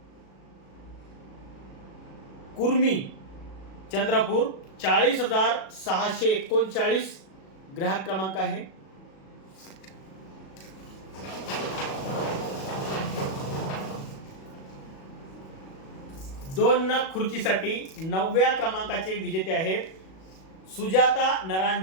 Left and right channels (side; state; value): right; late; 37 ms